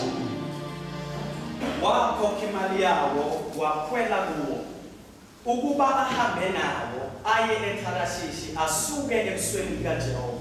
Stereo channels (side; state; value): both; identical; correlation 1.00